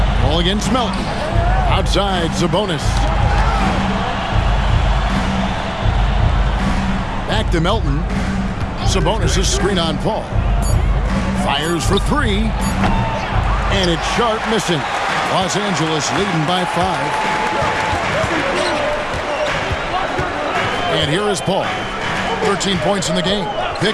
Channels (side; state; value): both; identical; correlation 1.00